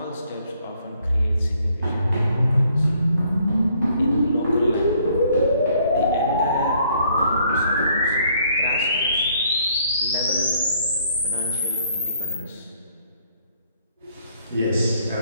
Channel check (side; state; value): both; inverted; correlation -0.65